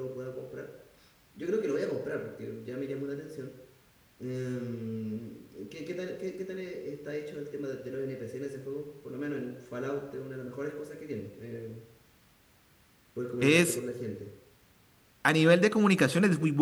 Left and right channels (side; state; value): both; identical; correlation 1.00